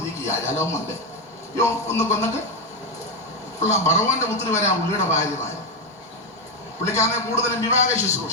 ഇരിക്കുക. ജലവുമുണ്ട്. ഒന്ന് കൊന്നിട്ട് ഭഗവാന്റെ പുത്രി വരെ ആ പുള്ളിയുടെ ഭാര്യമാര്. പുള്ളിക്കാരനെ കൂടുതലും വിവാഹ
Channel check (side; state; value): both; normal; correlation 0.09